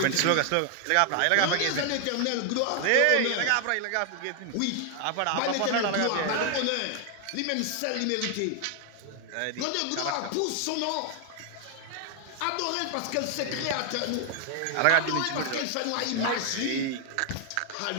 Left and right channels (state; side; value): different; both; correlation 0.00